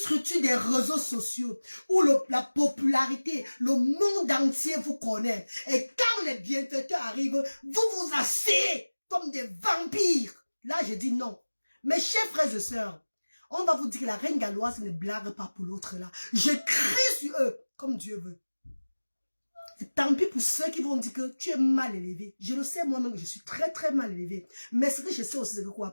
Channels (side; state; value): both; inverted; correlation -1.00